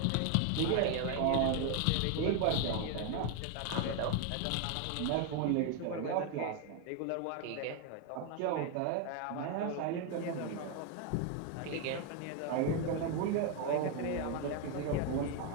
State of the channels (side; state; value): both; different; correlation 0.01